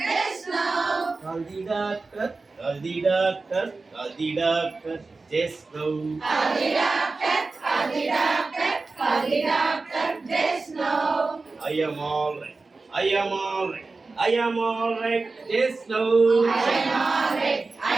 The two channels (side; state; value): left; quieter; 3.8 dB